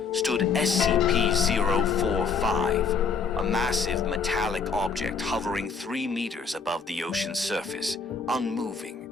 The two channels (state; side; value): quieter; right; 5.2 dB